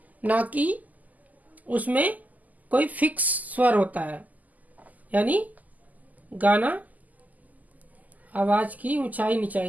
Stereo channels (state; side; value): late; left; 0.080 ms